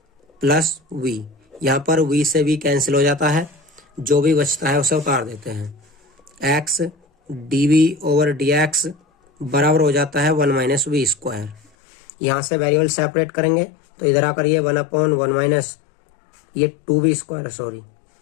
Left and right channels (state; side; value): drops out; right; at 11.7 s